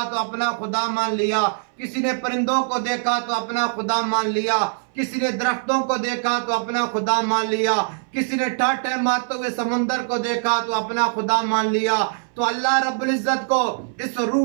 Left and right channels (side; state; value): left; silent; 62 dB below the other